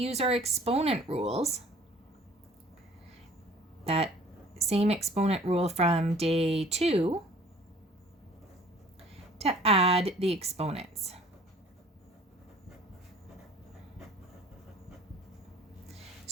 our exponent rules. That same exponent rule from day 2 to add the exponents.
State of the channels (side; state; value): both; normal; correlation 0.52